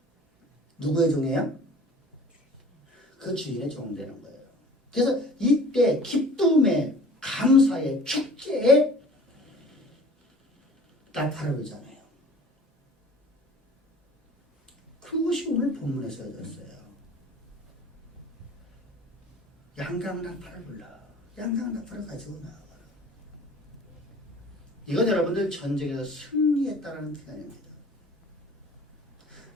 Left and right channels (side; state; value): both; normal; correlation 0.47